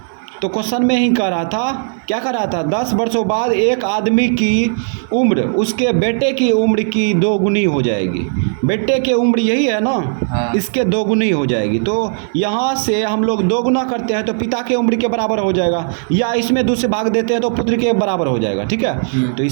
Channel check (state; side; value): silent; left; 58 dB below the other